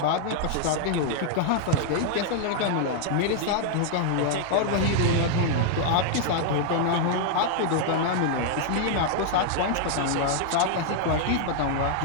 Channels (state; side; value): different; both; correlation 0.00